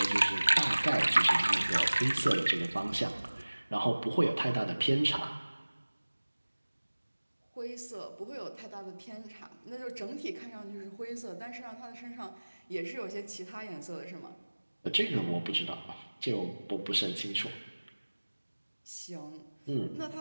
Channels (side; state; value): both; inverted; correlation -1.00